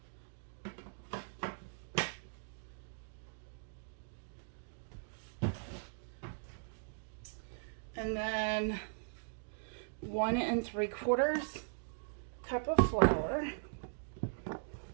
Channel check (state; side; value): silent; left; digital silence